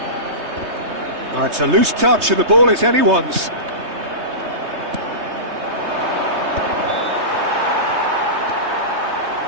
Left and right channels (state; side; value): late; left; 3.2 ms